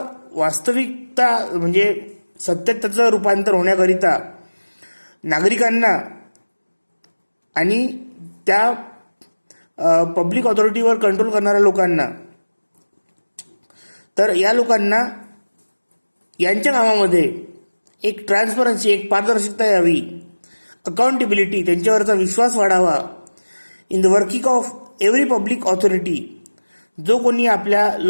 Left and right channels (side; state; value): both; inverted; correlation -1.00